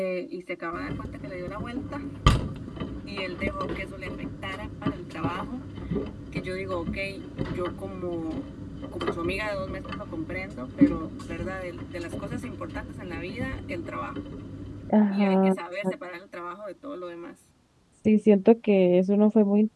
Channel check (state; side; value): identical; both; correlation 1.00